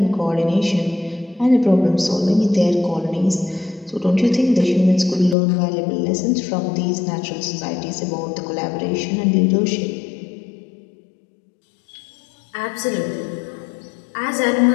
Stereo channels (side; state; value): right; drops out; at 5.4 s